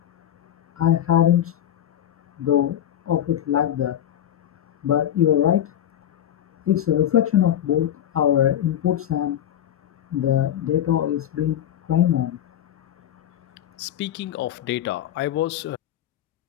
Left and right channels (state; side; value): quieter; right; 10.9 dB